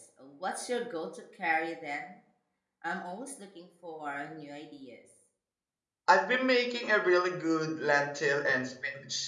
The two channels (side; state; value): both; identical; correlation 1.00